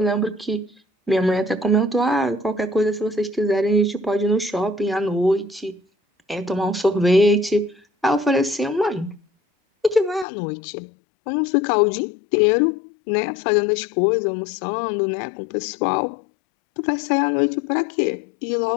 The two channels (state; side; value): drops out; right; at 10.2 s